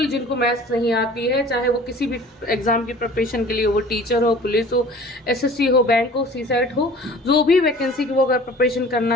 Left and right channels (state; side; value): normal; both; correlation 0.46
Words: जिनको मैथ्स नहीं आती है, चाहे वो किसी भी एग्जाम की प्रिपरेशन के लिए, वो टीचर हो, पुलिस हो, एसएससी हो, बैंक हो, सीसेट हो, जो भी वैकेंसी की वो अगर प्रिपरेशन